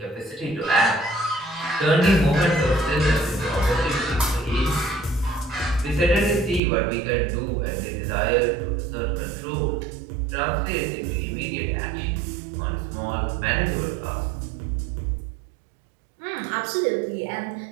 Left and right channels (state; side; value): drops out; left; at 6.6 s